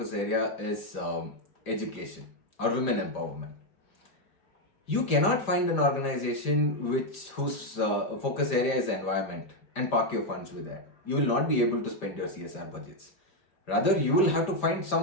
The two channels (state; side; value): late; right; 5.0 ms